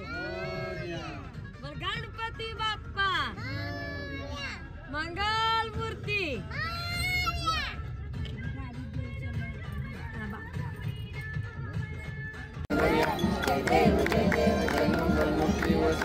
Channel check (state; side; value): identical; both; correlation 1.00